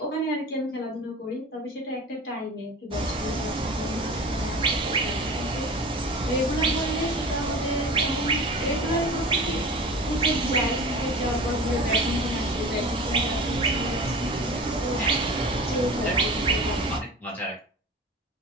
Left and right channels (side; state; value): both; normal; correlation 0.36